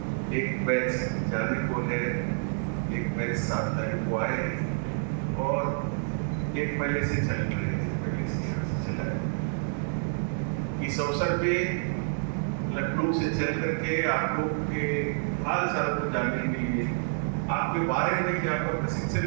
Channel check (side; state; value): left; silent; digital silence